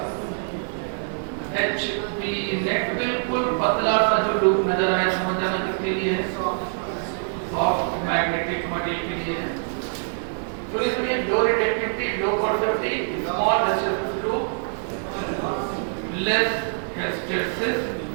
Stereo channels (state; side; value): silent; left; digital silence